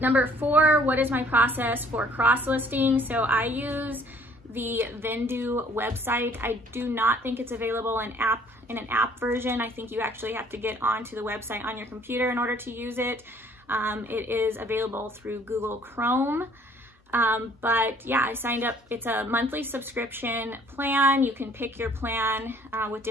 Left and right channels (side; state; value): both; normal; correlation 0.58